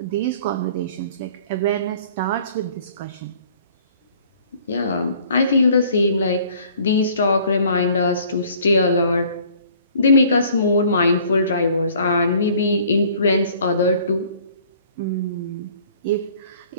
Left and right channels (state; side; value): inverted; both; correlation -0.55